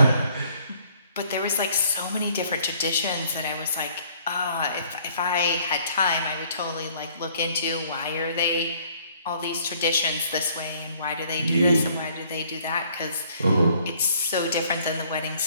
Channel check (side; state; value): both; inverted; correlation -0.61